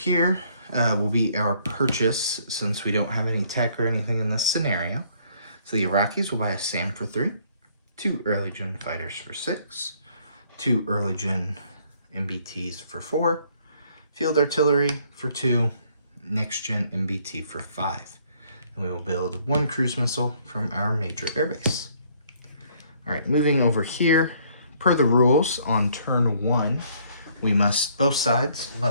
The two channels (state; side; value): inverted; both; correlation -0.64